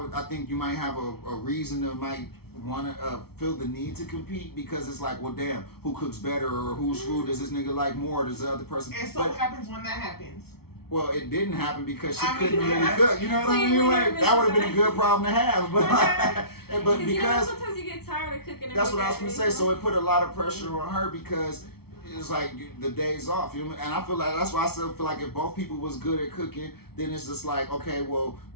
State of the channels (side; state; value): right; late; 0.95 ms